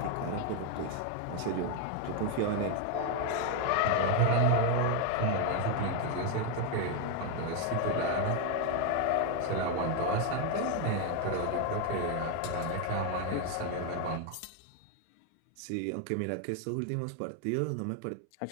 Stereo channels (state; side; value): different; both; correlation 0.01